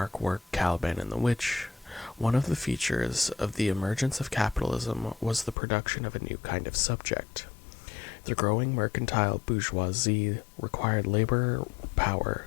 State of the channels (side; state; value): right; drops out; at 5.6 s